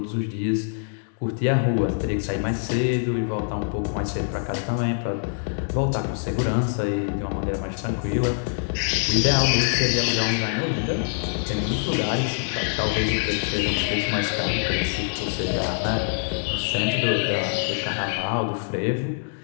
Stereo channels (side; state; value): right; silent; digital silence